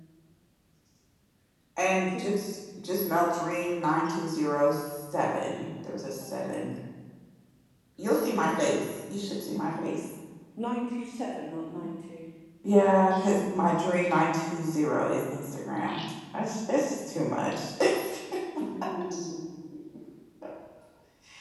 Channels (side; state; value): both; identical; correlation 1.00